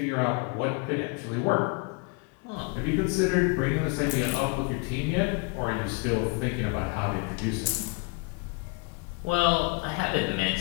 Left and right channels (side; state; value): right; quieter; 30.3 dB